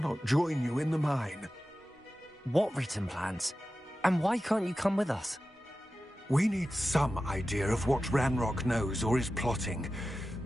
join you in the mine. What written plans? And why can't you come with us? We need some idea of what Ranrock knows or is plotting.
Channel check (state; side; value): normal; both; correlation 0.94